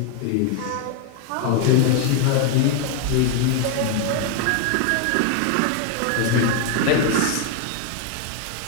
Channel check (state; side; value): different; both; correlation 0.00